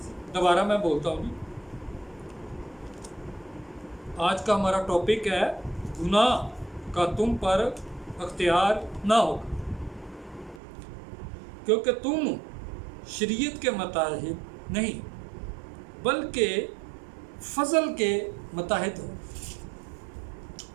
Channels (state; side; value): drops out; left; at 10.6 s